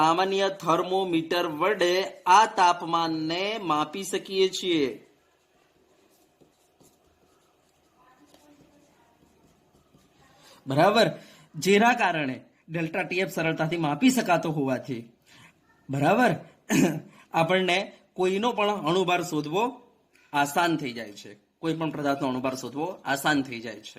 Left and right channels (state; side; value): identical; both; correlation 1.00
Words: થર્મોમીટર વડે આ તાપમાનને માપી શકીએ છીએ. બરાબર, જેના કારણે ડેલ્ટા TF સરળતાથી માપી શકાતો હોવાથી બરાબર આપણને કોઈનો પણ અણુભાર શોધવો આસાન થઈ જાય છે. કોઈ પણ પદાર્થનો અણુભાર શોધવો આસાન થઈ જાય